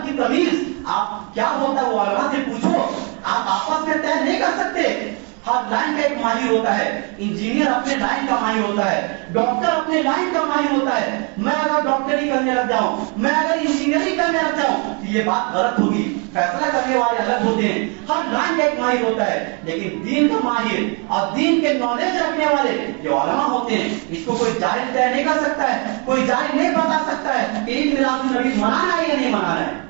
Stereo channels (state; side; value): quieter; left; 34.7 dB